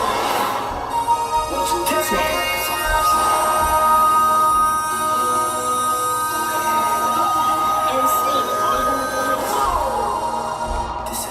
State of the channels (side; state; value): both; identical; correlation 1.00